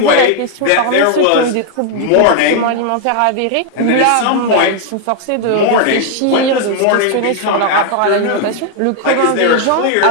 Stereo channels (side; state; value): both; different; correlation 0.00